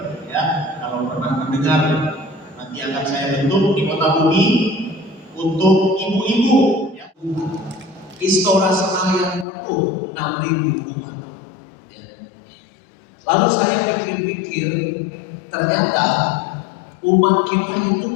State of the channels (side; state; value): right; drops out; at 9.5 s